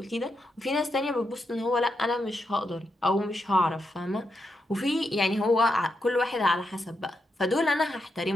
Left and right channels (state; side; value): normal; both; correlation 0.84